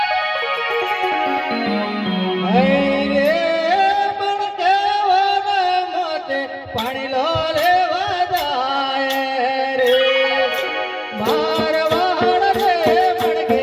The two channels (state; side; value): identical; both; correlation 1.00